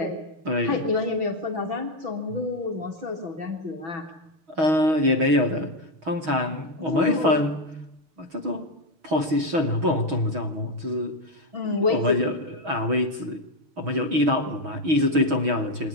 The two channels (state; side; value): late; left; 6.3 ms